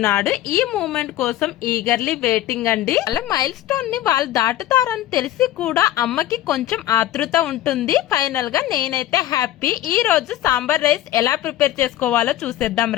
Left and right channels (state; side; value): quieter; right; 13.8 dB